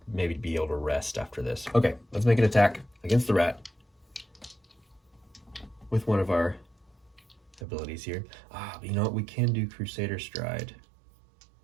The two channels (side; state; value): left; drops out; at 7.6 s